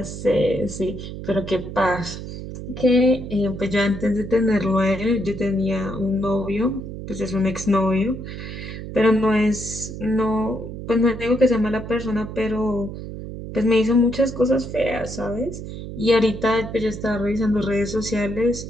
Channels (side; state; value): right; noise; hum, 9 dB below the sound